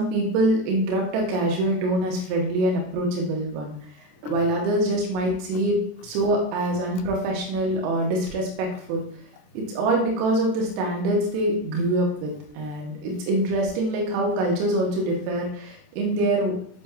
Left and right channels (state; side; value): late; left; 27 ms